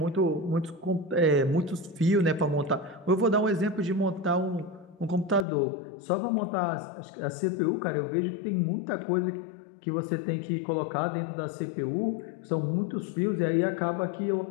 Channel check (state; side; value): drops out; right; at 5.5 s